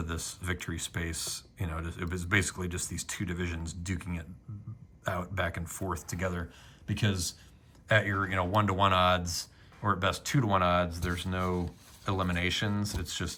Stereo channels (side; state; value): both; identical; correlation 1.00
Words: this victory space. It was basically just these two divisions duking it out back and forth together, because at your 1-to-1 odds, or at best 2-to-1 odds, there's no eliminations. It's